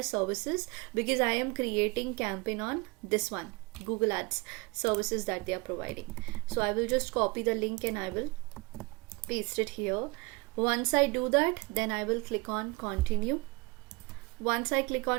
services because I am creating campaign on this one, Google Ads services that they are providing. So I will just copy the link and I will paste it here. Once I do that, then I will click on continue. Once I click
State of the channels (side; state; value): left; quieter; 25.9 dB